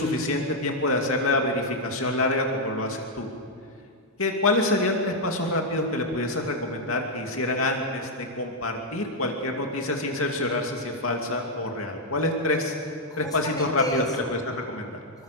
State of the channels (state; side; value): normal; both; correlation -0.02